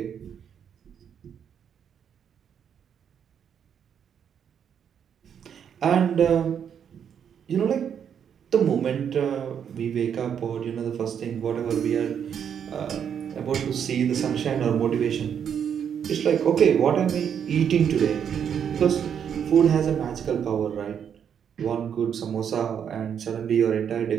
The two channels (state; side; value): quieter; left; 8.2 dB